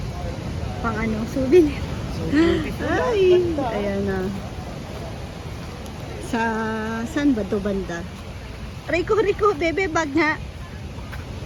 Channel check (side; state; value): both; identical; correlation 1.00